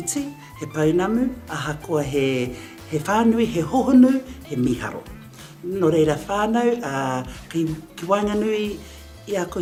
he paunamu, aha koa he whānui, he hohonu, he miharo. No reira whānau, ki Wainganui i a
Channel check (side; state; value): both; identical; correlation 1.00